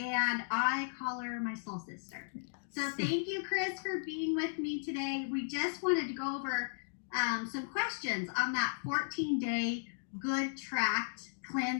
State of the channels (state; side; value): silent; right; digital silence